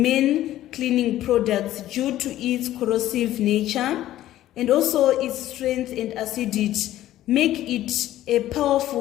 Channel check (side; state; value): right; quieter; 13.8 dB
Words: many cleaning products due to its corrosive nature and also its strength and acidity make it a